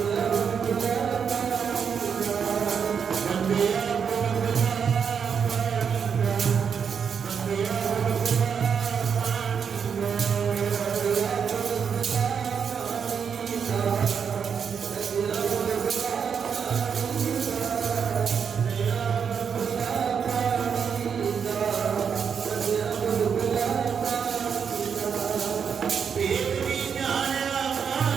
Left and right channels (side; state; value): left; quieter; 6.9 dB